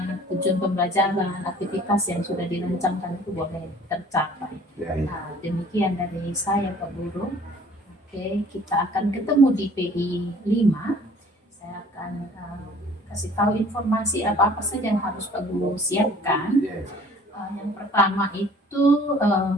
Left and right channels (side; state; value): both; normal; correlation 0.52